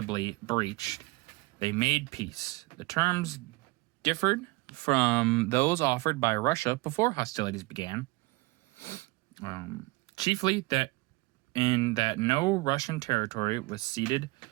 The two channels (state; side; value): quieter; left; 23.5 dB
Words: breached, they made peace. The terms differed from those offered by Russia before hostilities began. Chiefly that no Russian territory was ceded